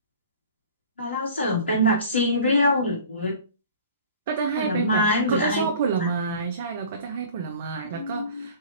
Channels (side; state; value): both; inverted; correlation -0.43